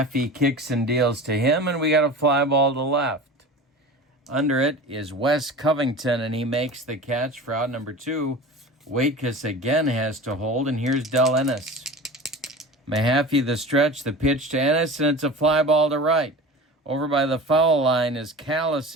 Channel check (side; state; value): both; normal; correlation 0.35